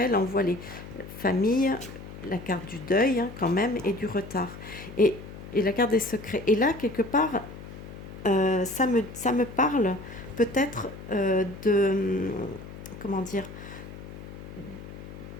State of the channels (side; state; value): left; noise; hum, 13 dB below the sound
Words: Là, on voit les familles, la carte du deuil, hein, quand même, et du retard. Et, et la carte des secrets. Et là, quelque part, ça me parle peut-être comment dire,